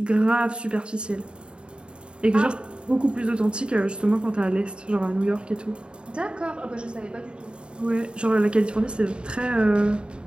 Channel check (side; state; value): left; late; 0.052 ms